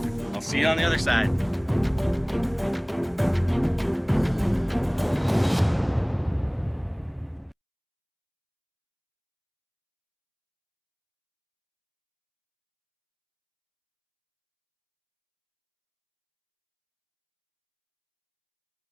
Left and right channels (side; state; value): both; identical; correlation 1.00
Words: I'll see you on the other side.